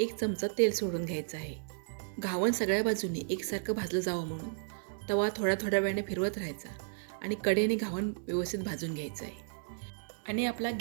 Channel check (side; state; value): left; silent; digital silence